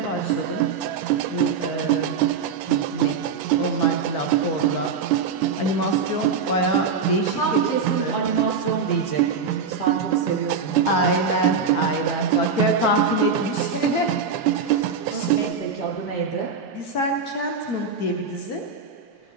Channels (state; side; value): quieter; left; 5.3 dB